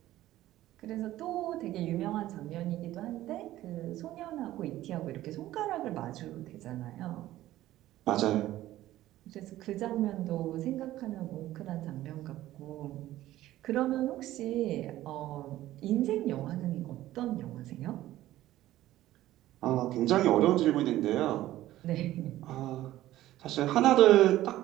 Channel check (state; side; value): quieter; left; 14.8 dB